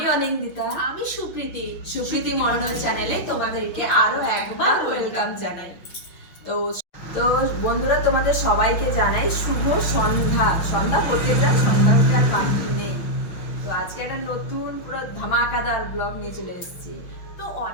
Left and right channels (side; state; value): right; late; 5.9 ms